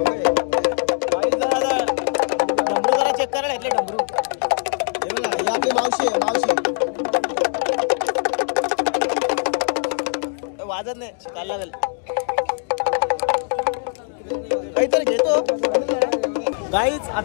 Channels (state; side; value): silent; right; 63 dB below the other